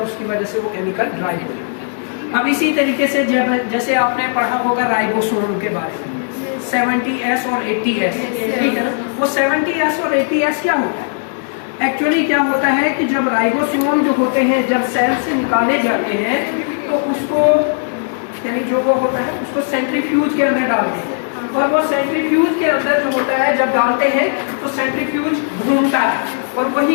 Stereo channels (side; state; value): right; silent; digital silence